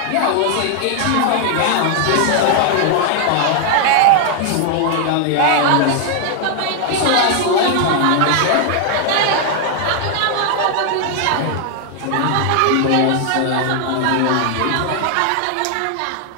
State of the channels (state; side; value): different; both; correlation 0.00